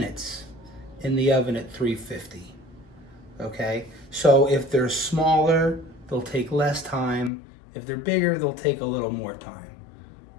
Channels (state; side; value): drops out; right; at 7.3 s